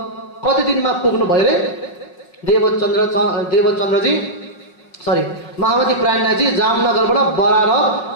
कति दिनमा पुग्नु भयो रे देवचन्द्रजी सरी महामती प्राणनाथजी जामनगरबाट बरारब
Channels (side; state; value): right; late; 5.5 ms